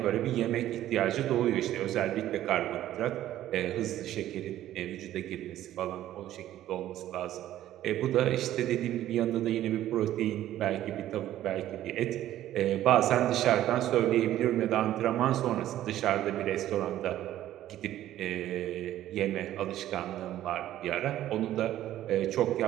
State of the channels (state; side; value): quieter; left; 13.1 dB